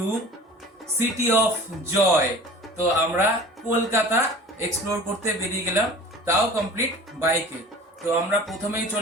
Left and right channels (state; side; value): normal; both; correlation 0.41